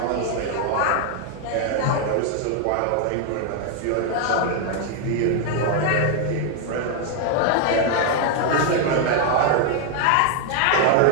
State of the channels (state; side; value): different; both; correlation 0.00